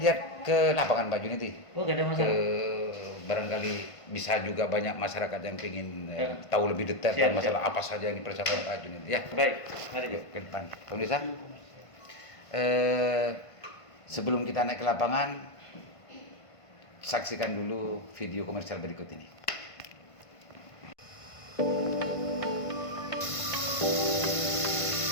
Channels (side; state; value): right; late; 1.5 ms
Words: ke lapangan Pak Junedi. Oh, gak ada masalah. Barangkali bisa juga banyak masyarakat yang ingin tahu lebih detail tentang masalah apa saja yang dipersiapkan Pak Junedi. Ya. Baik, mari ke depan. Pemirsa, sebelum kita naik ke lapangan, saksikan dulu video komersial berikut ini.